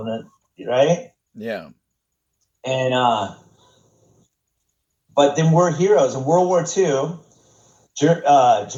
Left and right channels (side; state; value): both; identical; correlation 1.00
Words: right? Yeah. And, but then we're heroes. In World War II,